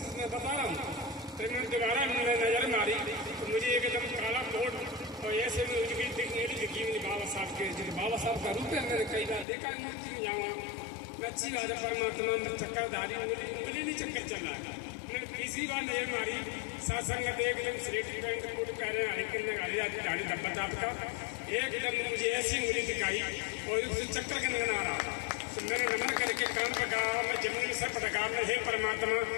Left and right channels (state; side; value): drops out; right; at 9.5 s